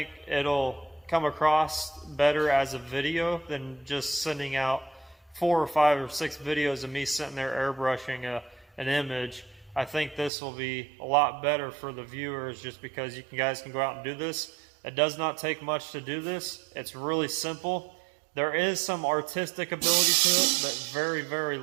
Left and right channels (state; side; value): drops out; left; at 10.3 s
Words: it'll come across better as a video than just sending out 4 or 5 or 6 videos of me sitting there airbrushing an image. I think this will be a lot better for the viewers just because you guys can go out and do this. It does not take much to do this. It's really simple. There is some artistic ability to it, but very